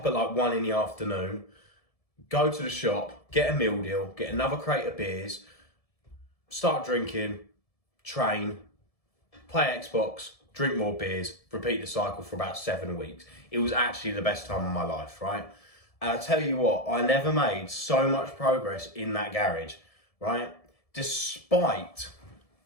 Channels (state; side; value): late; right; 1.7 ms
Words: at like 1 in the afternoon, go to the shop, get a meal deal, get another crate of beers, start drinking, train, play Xbox, drink more beers, repeat the cycle for about 7 weeks. It was actually the best time of my life, right? And I tell you what, I never made so much progress in that garage, right? Despite